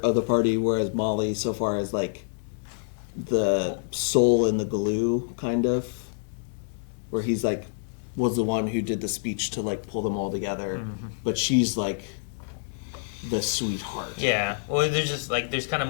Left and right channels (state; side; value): silent; right; digital silence